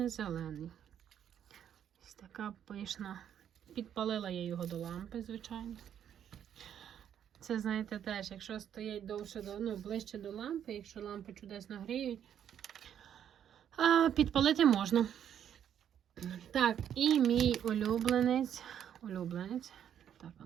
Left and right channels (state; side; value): quieter; left; 9.5 dB